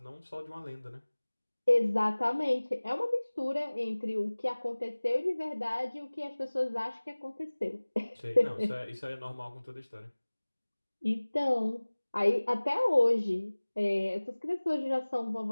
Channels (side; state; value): both; inverted; correlation -1.00